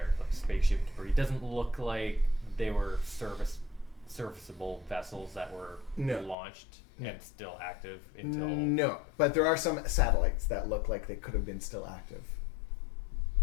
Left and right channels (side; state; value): right; drops out; at 6.4 s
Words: like spaceship debris. It doesn't look like they were serviceable vessels that were No. launched No. and still active until... No, but there are some satellites that look like they could have been still active.